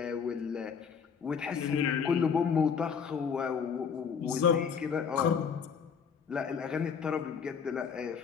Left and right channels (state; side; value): quieter; right; 6.6 dB